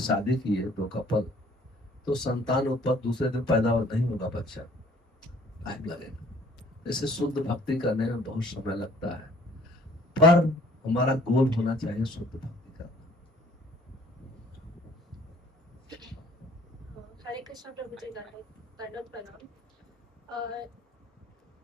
किए, दो कपल, तो संतान उत्पत्ति दूसरे दिन पैदा नहीं होगा बच्चा, टाइम लगेगा। जैसे शुद्ध भक्ति करने में बहुत समय लगता है, पर हमारा गोल होना चाहिए शुद्ध भक्ति करना। हरे कृष्ण प्रभु जी, दंडवत प्रणाम।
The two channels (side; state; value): both; normal; correlation 0.56